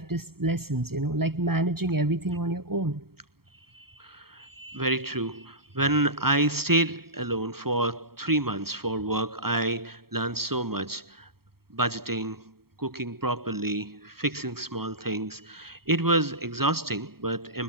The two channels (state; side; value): late; left; 0.95 ms